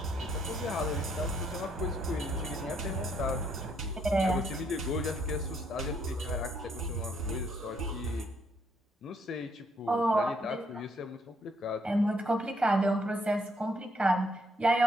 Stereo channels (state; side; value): normal; both; correlation 0.71